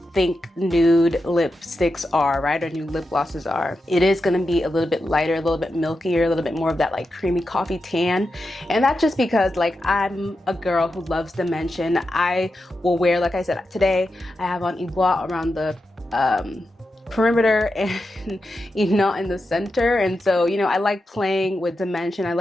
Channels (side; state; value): both; normal; correlation 0.89